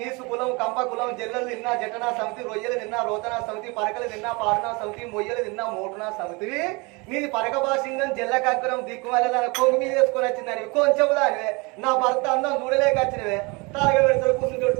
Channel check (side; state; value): left; quieter; 27.8 dB